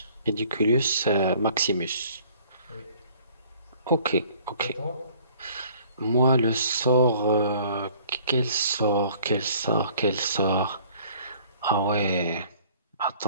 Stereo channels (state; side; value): inverted; both; correlation -0.55